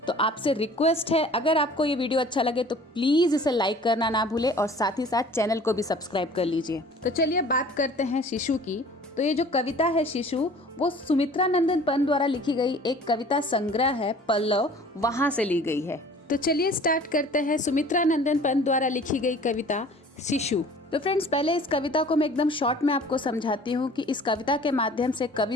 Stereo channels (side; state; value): both; normal; correlation 0.48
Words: तो आपसे रिक्वेस्ट है, अगर आपको ये वीडियो अच्छा लगे तो प्लीज़ इसे लाइक करना ना भूले और साथ ही साथ चैनल को भी सब्सक्राइब कर लीजिए। तो चलिए बात करते हैं शिशु की। तो ये जो कविता है शिशु, वो सुमित्रा नंदन पंत द्वारा लिखी गई एक कविता संग्रह है पल्लव, वहाँ से ली गई है। तो चलिए स्टार्ट करते हैं सुमित्रा नंदन पंत द्वारा लिखी गई कविता शिशु। तो फ्रेंड्स, पहले इस कविता को मैं एकदम शॉर्ट में आपको समझाती हूँ कि इस कविता के माध्यम से